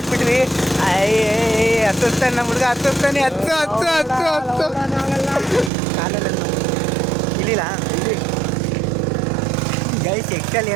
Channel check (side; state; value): left; drops out; at 5.7 s